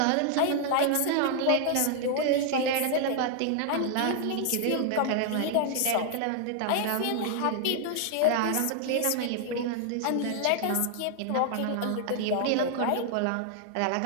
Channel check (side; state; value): both; different; correlation 0.00